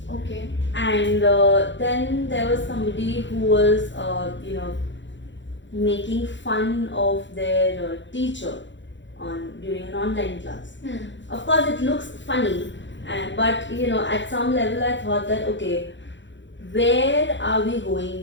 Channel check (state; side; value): late; right; 0.54 ms